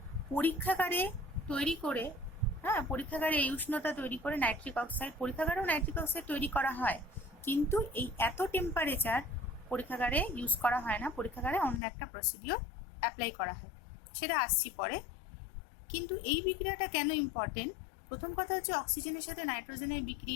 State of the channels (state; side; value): drops out; right; at 11.8 s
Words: পরীক্ষাগারে তৈরি করে, পরীক্ষাগারে এই উষ্ণতা তৈরি করে নাইট্রিক অক্সাইড, পরীক্ষাগারেও নাইট্রিক অক্সাইড তৈরি করা হয়, কিন্তু এই এত টেম্পারেচার পরীক্ষাগারে ইউজ করা হয় না, পরীক্ষাগারে অন্য একটা প্রসিডিওর অ্যাপ্লাই করা হয়, সেটা আসছি পরে। কিন্তু এই বিক্রিয়াটা কেন ইম্পর্টেন্ট? প্রথম কথা হচ্ছে অক্সিজেনের সাথে নাইট্রোজেনের